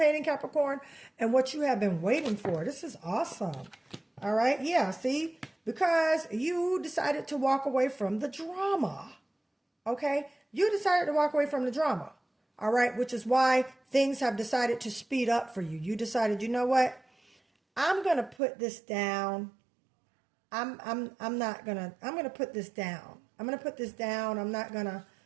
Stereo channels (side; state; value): left; drops out; at 18.4 s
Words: Capricorn, and what you have been waiting for. This is awesome. All right. Yeah. See, because you decided to walk away from the drama. Okay. You decided to walk away from the drama. All right. Which is why things have decided to speed up for you. You decided, you know what? I'm going to put this down. I'm going to put this down. I'm going to put this down. I'm